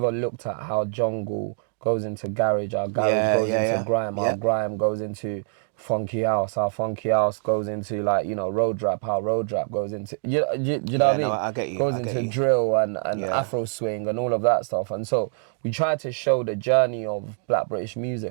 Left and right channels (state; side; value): silent; left; digital silence